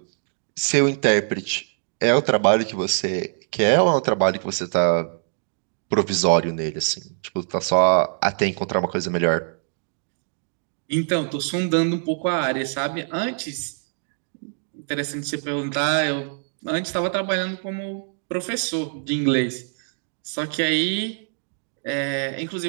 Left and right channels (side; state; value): left; silent; digital silence